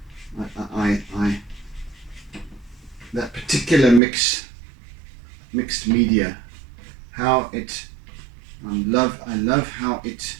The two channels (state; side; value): drops out; left; at 4.0 s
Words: that particular mixed media, how it I love how it